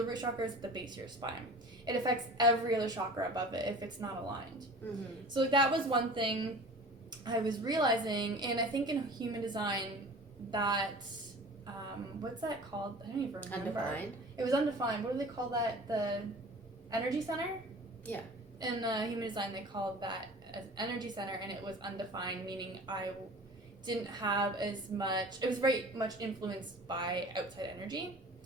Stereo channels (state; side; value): normal; both; correlation 0.41